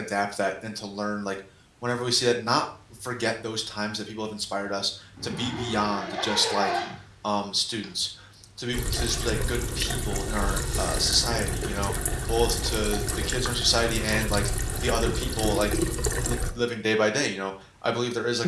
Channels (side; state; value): both; identical; correlation 1.00